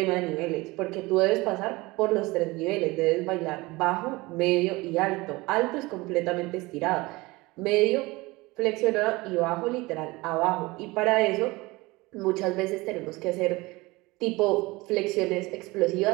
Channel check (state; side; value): quieter; left; 22.2 dB